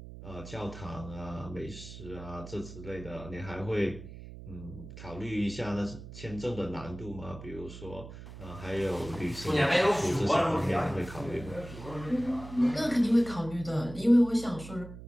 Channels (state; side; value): noise; right; hum, 13 dB below the sound